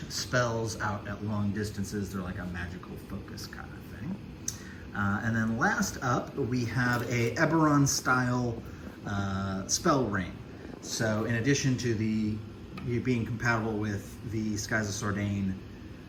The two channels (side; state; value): both; identical; correlation 1.00